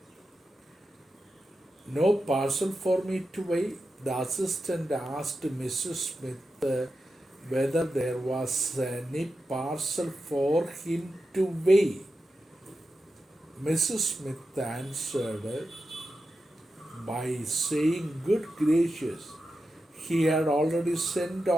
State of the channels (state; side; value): normal; both; correlation 0.90